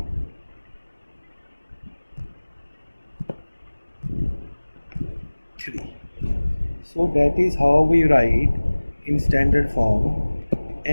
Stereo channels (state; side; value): inverted; both; correlation -1.00